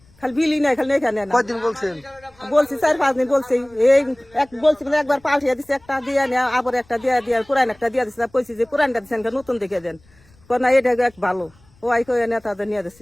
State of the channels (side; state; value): left; noise; rumble, 30 dB below the sound